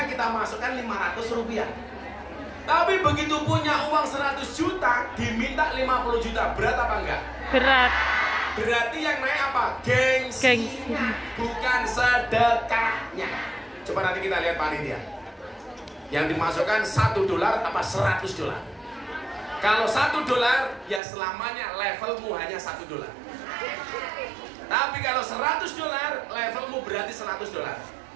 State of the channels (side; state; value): left; drops out; at 21.0 s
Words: kita masukkan 500 rupiah. Tapi begitu punya uang 100 juta, diminta 50 juta, berat apa enggak? Berat. Berarti yang naik apa? Gengsinya, bukan sedekahnya. Coba nanti kita lihat panitia. Yang dimasukkan $1 apa $100? Kalau $1 ya selamanya levelmu hanya $1. Tapi kalau $100 levelmu berarti $100.